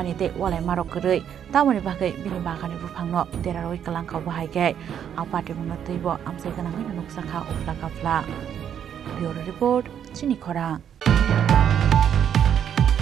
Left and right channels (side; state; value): left; quieter; 9.0 dB